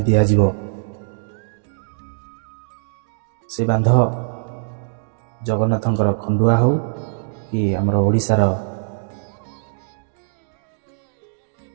ଦିଆଯିବ, ସେ ବାନ୍ଧ ଜଗନ୍ନାଥଙ୍କର ଖଣ୍ଡୁଆ ହେଉ କି ଆମର ଓଡ଼ିଶାର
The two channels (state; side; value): silent; left; digital silence